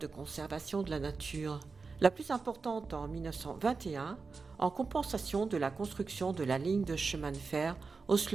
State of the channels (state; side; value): quieter; left; 4.5 dB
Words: conservation de la nature. La plus importante en 1921, en compensation de la construction de la ligne de chemin de fer